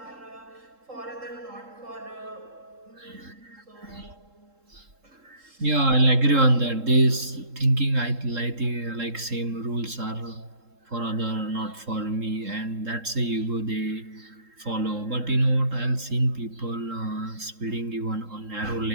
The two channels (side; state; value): left; late; 3.7 ms